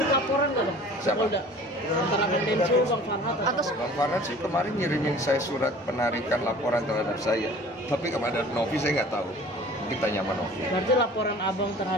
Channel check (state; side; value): normal; both; correlation 0.46